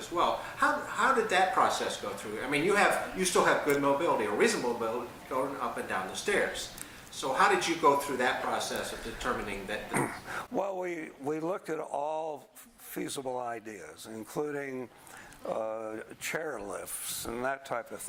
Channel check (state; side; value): identical; both; correlation 1.00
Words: well. How did that process go through? I mean, you still have good mobility or reasonable mobility going up and down the stairs. So how did you go through that process of determining that? Well, we looked at all feasible ideas, including chair lifts and that type of